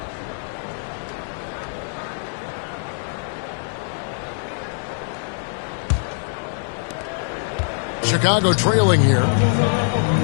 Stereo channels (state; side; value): silent; right; digital silence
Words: Chicago trailing here.